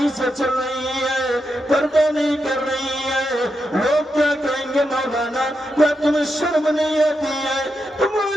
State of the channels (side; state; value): both; normal; correlation 0.85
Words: سے چل رہی ہے، پردہ نہیں کر رہی ہے، لوگ کیا کہیں گے؟ مولانا کیا تمہیں شرم نہیں آتی ہے؟